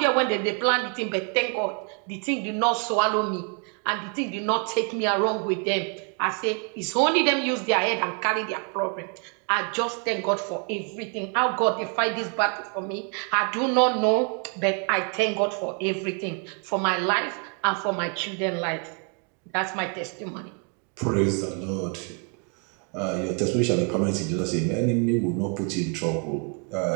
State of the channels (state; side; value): quieter; left; 39.1 dB